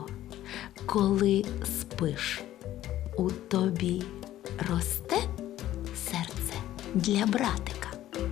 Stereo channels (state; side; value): quieter; right; 13.5 dB